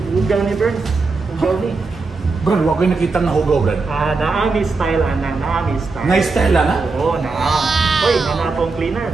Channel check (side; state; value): left; quieter; 4.0 dB